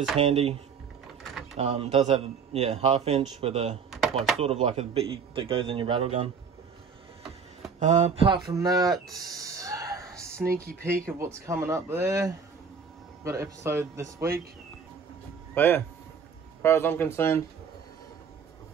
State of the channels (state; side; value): quieter; left; 6.1 dB